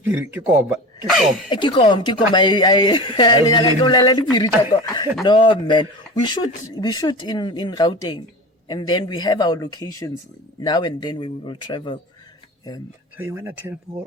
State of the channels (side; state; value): both; normal; correlation 0.31